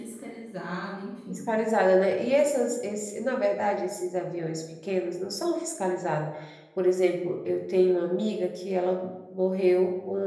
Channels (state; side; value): identical; both; correlation 1.00